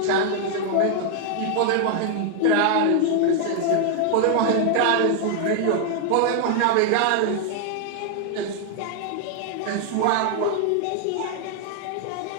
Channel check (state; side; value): different; both; correlation 0.00